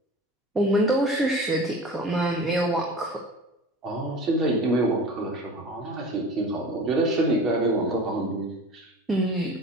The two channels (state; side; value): normal; both; correlation 0.38